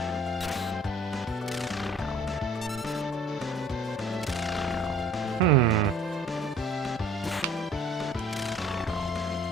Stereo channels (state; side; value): normal; both; correlation 0.53